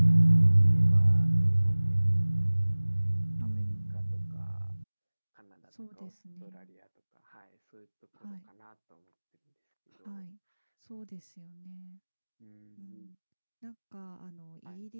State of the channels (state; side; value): inverted; both; correlation -1.00